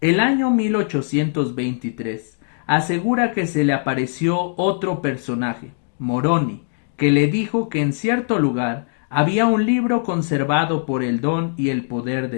año 1823 asegura que se le apareció otro personaje, Moroni, que le dijo que en cierto lugar había un libro conservado por el don y el poder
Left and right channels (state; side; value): silent; right; digital silence